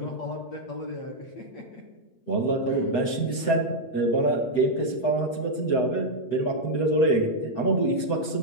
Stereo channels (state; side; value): late; right; 7.9 ms